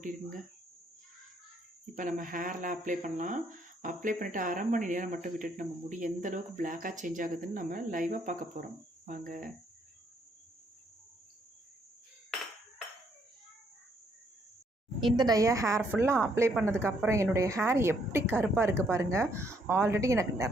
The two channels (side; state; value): both; normal; correlation 0.70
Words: இப்போ நம்ம ஹேரில் அப்ளை பண்ணலாம். அப்ளை பண்ணிவிட்டு அரை மணி நேரம் மட்டும் விட்டுட்டு நம்ம முடி எந்த அளவுக்கு பிளாக்காக சேஞ்ச் ஆகுதுன்னு நம்ம லைவாக பார்க்க போகிறோம். வாங்க. இந்த டையை ஹேர் ஃபுல்லாக அப்ளை பண்ணதுக்கப்புறம் என்னுடைய ஹேர் எப்படி கருப்பாக இருக்குது பாருங்கள். ஆல்ரெடி எனக்கு